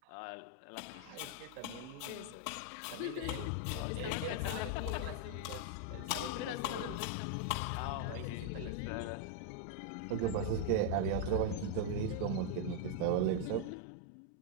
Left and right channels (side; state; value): both; different; correlation 0.00